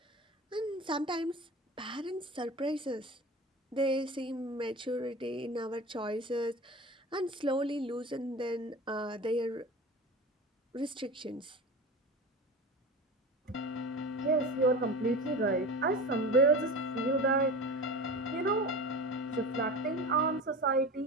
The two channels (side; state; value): both; normal; correlation 0.31